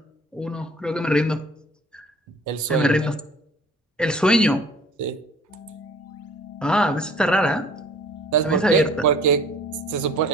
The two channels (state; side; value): normal; both; correlation 0.50